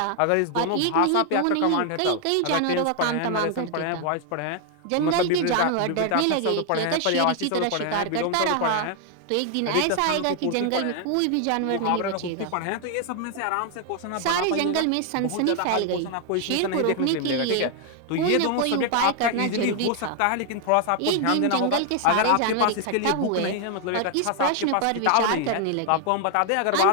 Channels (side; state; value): both; different; correlation 0.00